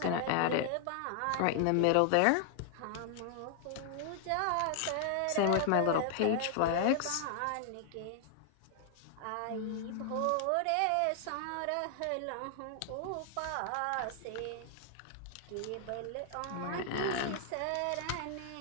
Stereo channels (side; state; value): both; different; correlation 0.00